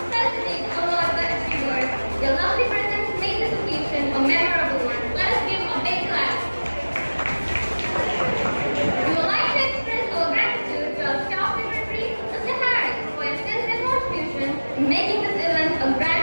felicitate all of the achievers. Your lovely presence made this occasion a memorable one. Let us give a big clap. We would like to express our gratitude to our staff secretary, Mr. Harris, for your sensitive contribution in making this event a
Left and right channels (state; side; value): inverted; both; correlation -1.00